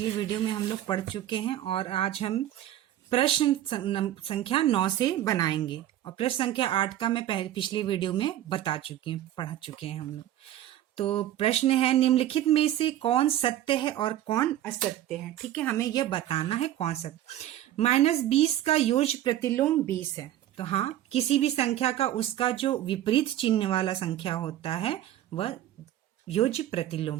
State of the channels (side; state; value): left; quieter; 12.7 dB